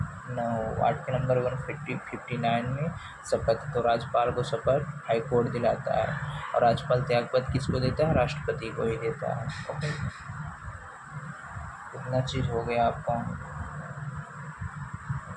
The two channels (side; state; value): both; identical; correlation 1.00